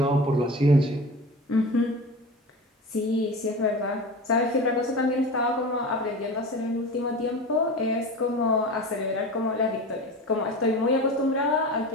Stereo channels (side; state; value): both; normal; correlation 0.32